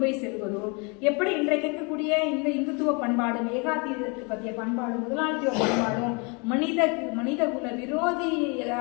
போய் செல்வதோ, எப்படி இன்றைக்கு இருக்கக்கூடிய இந்த இந்துத்துவ பண்பாடு, ஏகாதிபத்திய பற்றிய பண்பாடு, முதலாளித்துவ பண்பாடும் மனித குல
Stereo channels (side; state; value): right; quieter; 32.0 dB